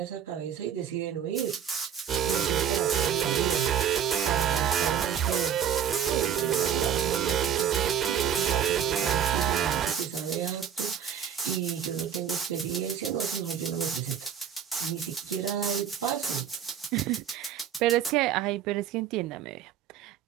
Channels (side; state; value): left; quieter; 8.7 dB